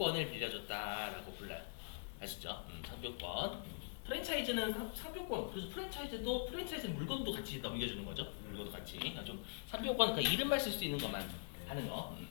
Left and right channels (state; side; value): silent; right; digital silence